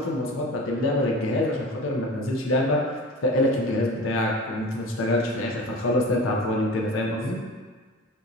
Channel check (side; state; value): both; normal; correlation 0.36